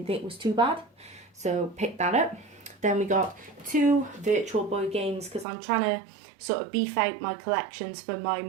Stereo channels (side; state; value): left; drops out; at 5.5 s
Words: think was too bad, so picked that up. Then we got 2 Virtual Boy games, because I'm trying to sort of beef out my collections for my